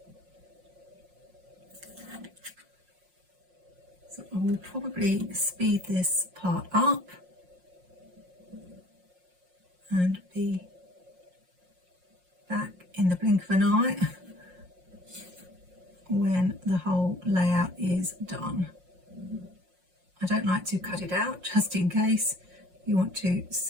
So I will probably speed this part up and be back in the blink of an eye when the whole layout is done. I don't like to cut it out just in case you want to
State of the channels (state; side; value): late; left; 5.5 ms